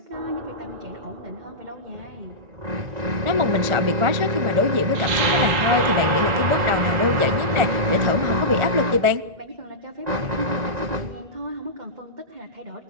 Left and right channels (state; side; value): late; left; 1.4 ms